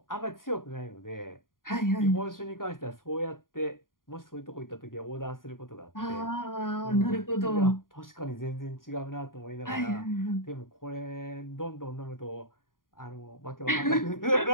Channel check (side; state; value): right; late; 0.90 ms